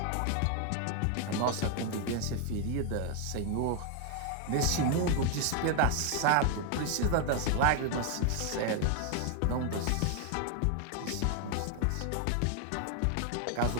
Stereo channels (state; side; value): different; both; correlation 0.00